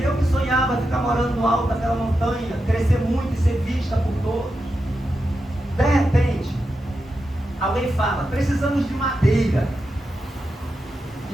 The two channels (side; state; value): both; normal; correlation 0.88